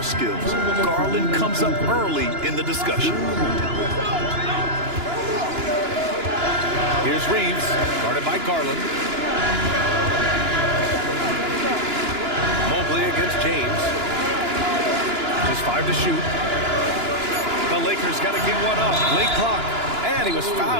skills, Garland comes up early in the discussion. Here's Reeves, guarded by Garland. Mobley against James. Just 5 to shoot. The Lakers got to get one up. Late clock. And he was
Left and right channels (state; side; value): late; left; 2.9 ms